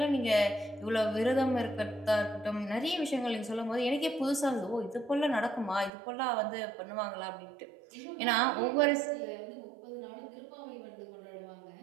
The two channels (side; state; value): left; drops out; at 5.9 s